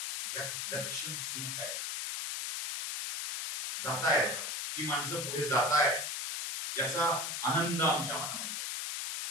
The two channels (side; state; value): left; noise; hiss, 3 dB below the sound